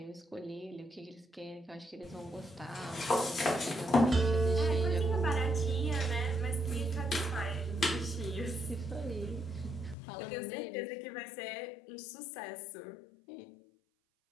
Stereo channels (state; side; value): drops out; right; at 10.0 s